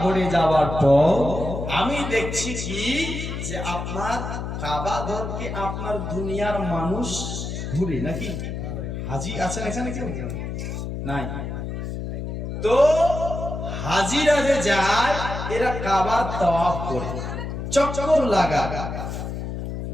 ঘরে যাওয়ার পর আমি দেখছি কি যে আপনার কাবা ঘরকে আপনার দুনিয়ার মানুষ ঘুরে নাকি? হাজি আছেন এখানে কেউ? নাই। তো হাজিরা যে যায় এরা কাবার তাওয়াফ করে, চক্কর লাগা।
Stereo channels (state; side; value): noise; left; hum, 5 dB below the sound